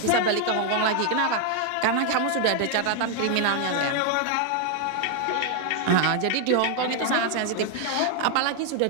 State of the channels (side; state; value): both; different; correlation 0.00